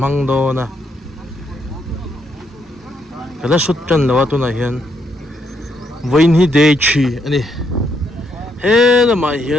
đó na cái là xuất chân là tu này hiện với hi day chi anh he là mà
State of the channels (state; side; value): normal; both; correlation 0.75